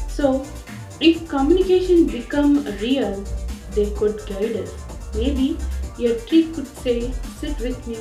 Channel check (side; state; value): both; identical; correlation 1.00